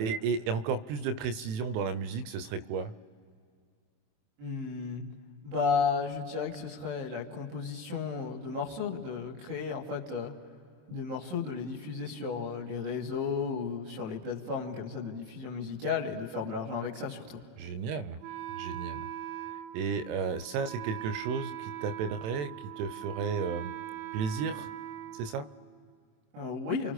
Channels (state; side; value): late; left; 27 ms